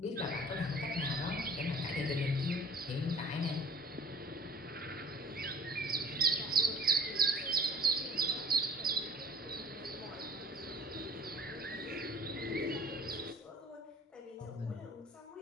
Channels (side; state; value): both; normal; correlation 0.48